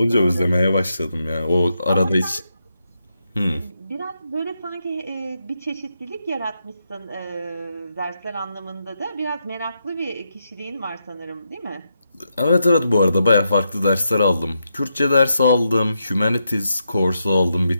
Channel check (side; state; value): both; inverted; correlation -0.83